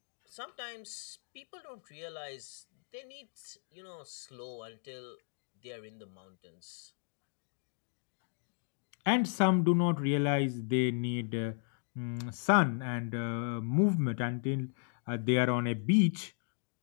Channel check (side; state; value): right; silent; 54 dB below the other